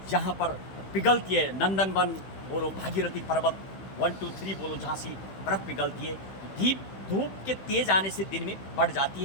जहाँ पर पिघलती है, नंदनवन बोलो, भागीरथी पर्वत 1 2 3 बोलो, जहाँ से बर्फ़ पिघलती है। धूप के तेज आने से दिन में बढ़ जाती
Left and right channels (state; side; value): late; right; 16 ms